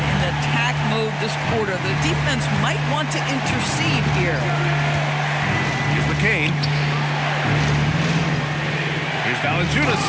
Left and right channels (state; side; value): identical; both; correlation 1.00